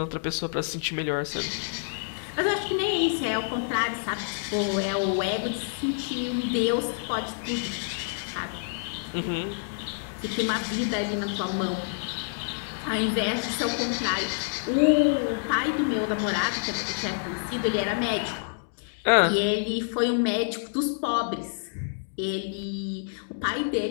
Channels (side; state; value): right; silent; digital silence